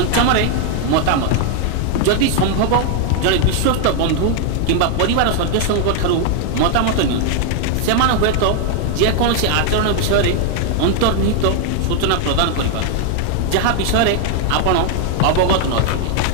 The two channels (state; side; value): different; both; correlation 0.00